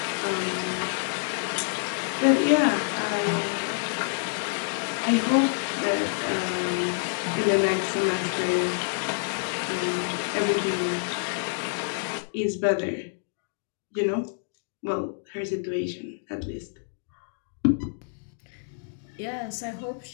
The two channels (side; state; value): right; silent; digital silence